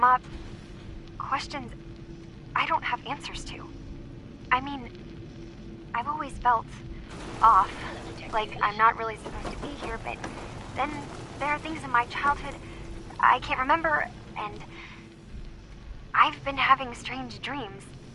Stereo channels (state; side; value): identical; both; correlation 1.00